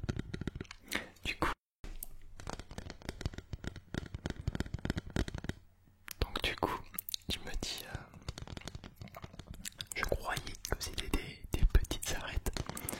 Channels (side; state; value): both; identical; correlation 1.00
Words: Du coup, je me dis, je croyais que c'était des petites arêtes,